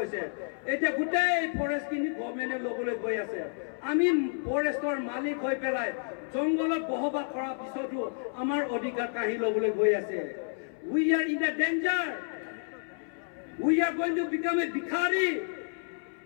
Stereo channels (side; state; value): right; silent; 58 dB below the other